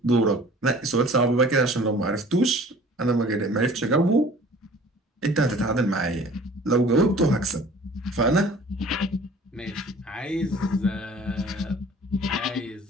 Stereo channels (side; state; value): both; normal; correlation 0.48